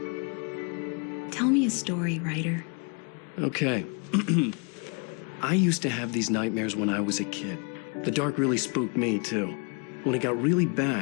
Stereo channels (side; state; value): right; quieter; 35.6 dB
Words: Tell me a story, writer. Okay. I used to have these nightmares when I was a kid. The dark really spooked me, too. When it got really